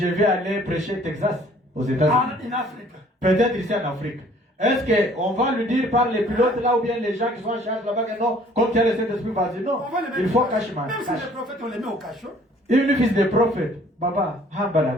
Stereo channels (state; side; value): normal; both; correlation 0.56